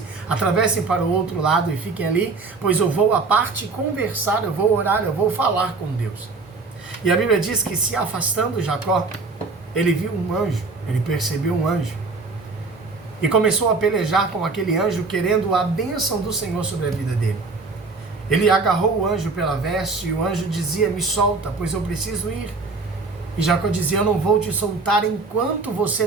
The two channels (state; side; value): quieter; left; 4.0 dB